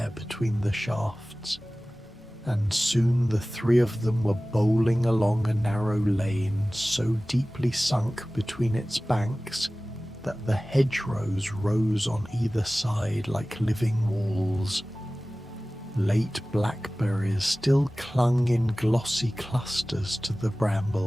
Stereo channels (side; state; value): both; normal; correlation 0.97